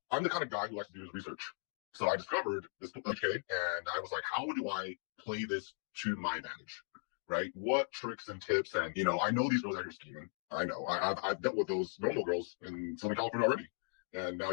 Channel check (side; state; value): right; silent; 53 dB below the other